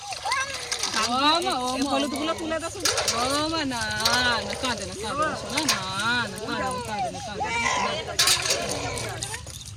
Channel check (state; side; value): identical; both; correlation 1.00